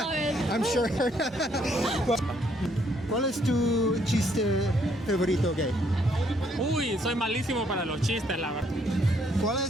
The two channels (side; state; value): both; normal; correlation 0.69